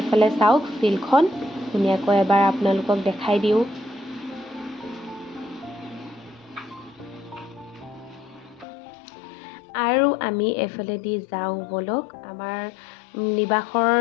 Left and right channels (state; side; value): drops out; right; at 8.7 s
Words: চাওক ফিল্ডখন ধুনীয়াকৈ এবাৰ আপোনালোকক দেখাই দিওঁ আৰু আমি এফালেদি যাওঁ বলক আমাৰ নিবাসৰ